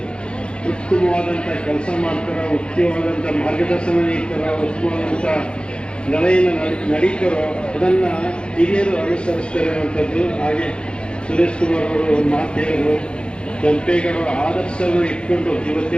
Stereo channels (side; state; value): right; late; 0.054 ms